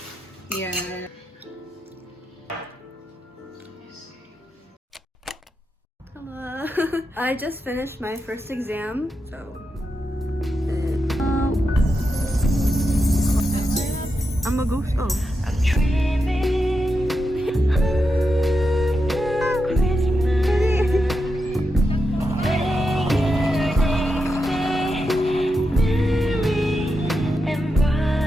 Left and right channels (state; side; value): normal; both; correlation 0.87